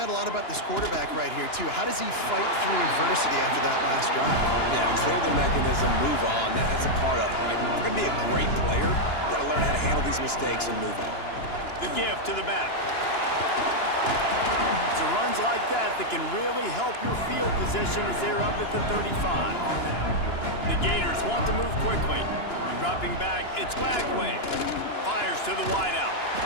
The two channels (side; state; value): right; late; 2.9 ms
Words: a lot about this quarterback right here, too. How does he fight through adversity after that last drive? Yeah, clear the mechanism, move on. That's a part of it, right? If you're going to be a great player, you got to learn how to handle these mistakes and move on. The give to the back. It's runs like that can really help your field position as they're up at the 35. The Gators want to move quickly. Dropping back, it's Lagway. Fires to the wideout.